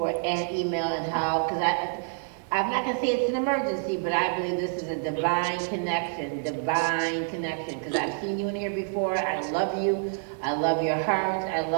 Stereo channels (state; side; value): silent; left; 60 dB below the other